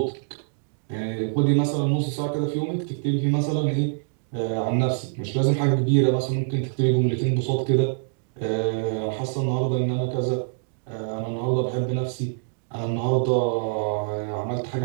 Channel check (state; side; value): silent; left; digital silence